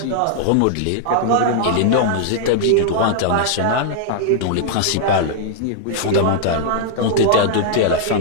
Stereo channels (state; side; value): different; both; correlation -0.01